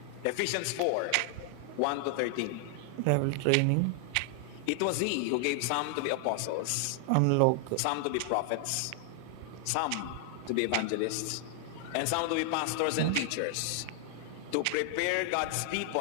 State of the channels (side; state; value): both; different; correlation 0.00